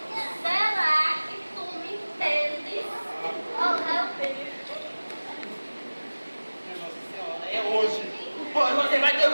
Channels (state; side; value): inverted; both; correlation -1.00